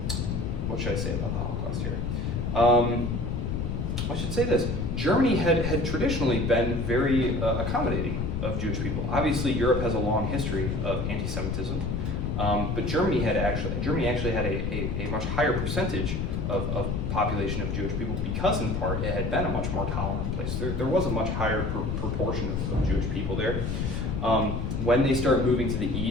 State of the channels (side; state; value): left; noise; rumble, 1 dB below the sound